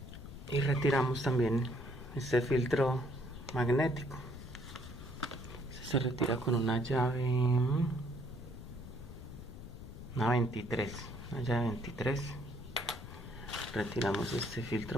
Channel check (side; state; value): left; noise; rumble, 12 dB below the sound